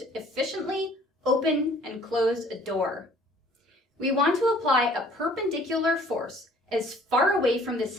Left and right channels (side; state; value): both; normal; correlation 0.55